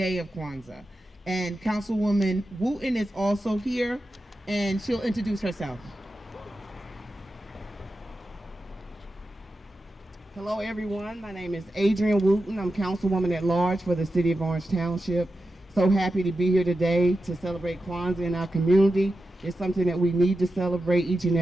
of Kwanzaa. And Councilwoman Wooten is also here, and she'll introduce herself. Hello everyone, my name is Adrienne Wooten. I'm Councilwoman-at-Large for the City of Orange Township. So happy to be here today to celebrate Kwanzaa in our community. It's something that we need to celebrate each and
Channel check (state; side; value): normal; both; correlation 0.91